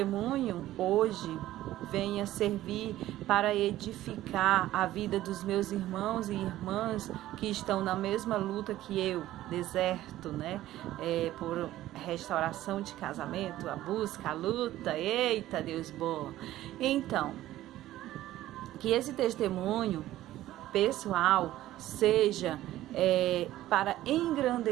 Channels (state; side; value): quieter; left; 14.6 dB